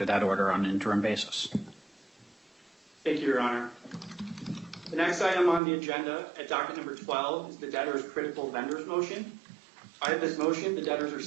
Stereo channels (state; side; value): drops out; left; at 5.6 s